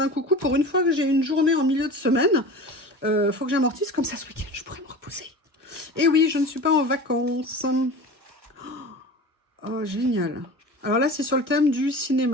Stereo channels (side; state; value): left; late; 1.2 ms